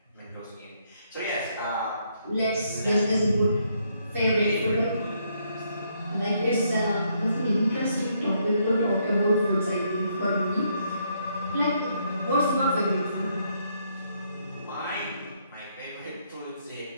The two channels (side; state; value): both; inverted; correlation -0.73